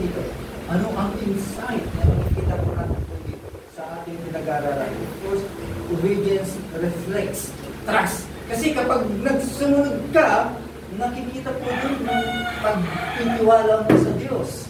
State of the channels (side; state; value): both; identical; correlation 1.00